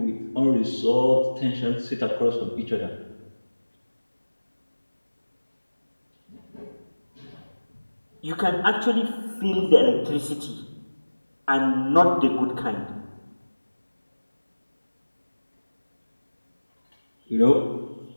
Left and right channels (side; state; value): both; inverted; correlation -1.00